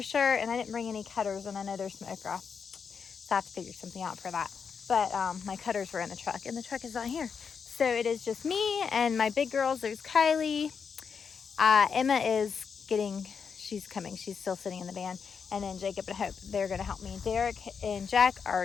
sure. And I didn't bring any cutters, and I know there's some okra, so I have to figure something out for that. But my cutters were in the truck, and the truck is not here. So it is just me and my big girls. There's Kylie. Emma is she's coming. She's still sitting in the van. And then Jacob and Hope, they're going to help me. Derek and Jack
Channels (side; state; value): right; quieter; 6.2 dB